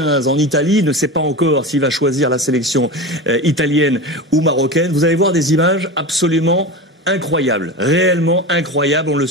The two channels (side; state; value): both; normal; correlation 0.27